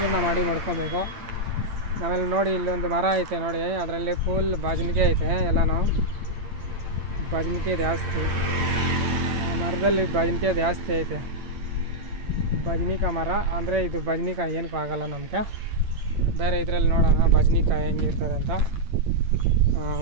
ಮಾಡ್ಕೊಬೇಕು. ಆಮೇಲೆ ನೋಡಿ, ಇಲ್ಲೊಂದು ಮರ ಐತೆ ನೋಡಿ, ಅದರಲ್ಲಿ ಫುಲ್ ಬಜನಿಕೆ ಐತೆ. ಎಲ್ಲನೂ ಬಜನಿಕೆ ಜಾಸ್ತಿ, ಮರದಲ್ಲಿ ಬಜನಿಕೆ ಜಾಸ್ತಿ ಐತೆ. ಬಜನಿಕಾಯಿ ಮರ ಅಂದರೆ ಇದು ಬಜನಿಕಾಯಿ ಏನಕ್ಕೂ ಆಗೋಲ್ಲ ನಮಗೆ. ಬೇರೆ ಇದರಲ್ಲಿ ನೋಡೋಣ ಬಜನಿಕಾಯಿ ಹೆಂಗಿರ್ತದೆ ಅಂತ.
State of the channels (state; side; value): late; left; 8.8 ms